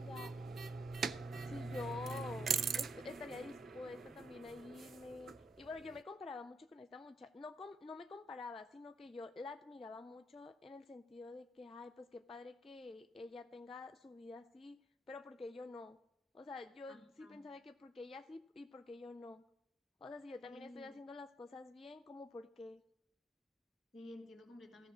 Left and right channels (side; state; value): both; normal; correlation 0.76